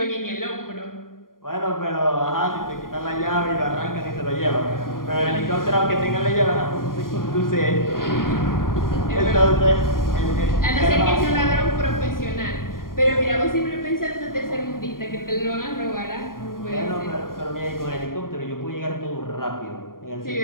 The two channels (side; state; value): right; late; 0.91 ms